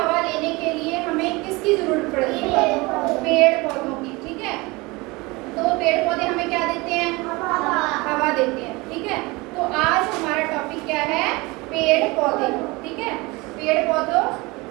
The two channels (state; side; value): quieter; left; 24.0 dB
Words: लेने के लिए हमें किसकी जरूरत पड़ती है? पेड़ पौधों की, ठीक है। तो पेड़ पौधे हमें क्या देते हैं? हवा देते हैं, ठीक है। तो आज हमारा टॉपिक क्या है? पेड़ पौधे, ठीक है। पेड़ पौधों